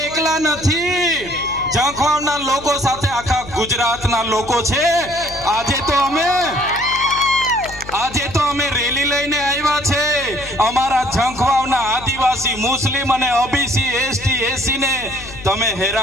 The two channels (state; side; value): noise; left; hum, 16 dB below the sound